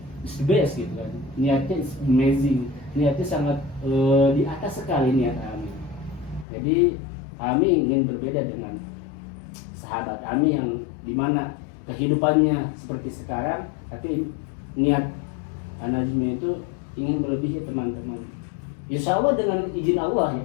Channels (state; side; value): drops out; right; at 6.5 s